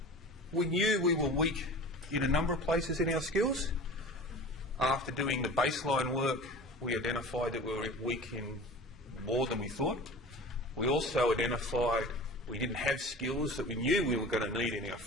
we knew we were weak in a number of places in our skills. After doing the baseline work, we identified that we were weak in more than we thought. We also identified we didn't have skills that we knew we were going to need in our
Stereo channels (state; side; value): normal; both; correlation 0.38